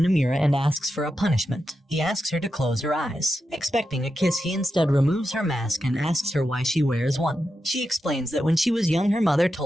and asks for a punishment. He asks her to close her eyes. Expecting a kiss, he instead removes her mask and asks her why she wears one. She explains that when she was young, her mother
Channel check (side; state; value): both; normal; correlation 0.88